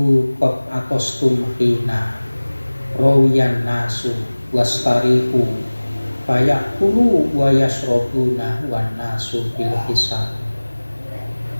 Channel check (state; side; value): inverted; both; correlation -1.00